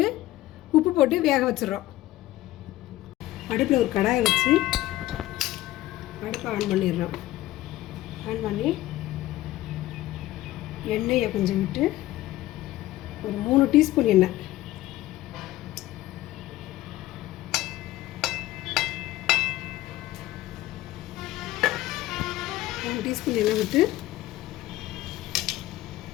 உப்பு போட்டு வேக வச்சிடுறோம். அடுப்பில் ஒரு கடாயை வச்சு அடுப்பை ஆன் பண்ணிடுறோம். ஆன் பண்ணி எண்ணெயை கொஞ்சம் விட்டு ஒரு 3 டீஸ்பூன் எண்ணெய், விட்டு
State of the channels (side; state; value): right; quieter; 16.0 dB